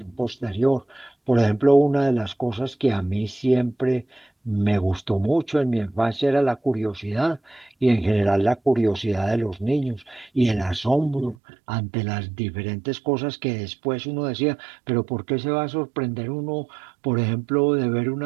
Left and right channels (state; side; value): drops out; left; at 11.4 s